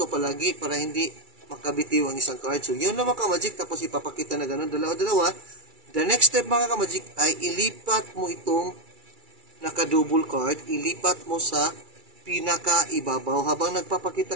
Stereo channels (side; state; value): left; late; 2.3 ms